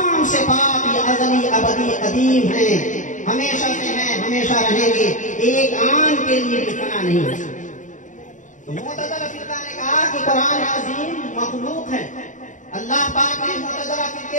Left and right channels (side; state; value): right; late; 0.37 ms